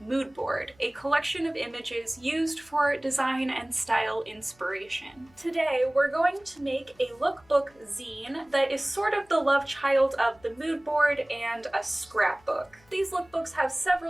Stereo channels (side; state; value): left; noise; hum, 30 dB below the sound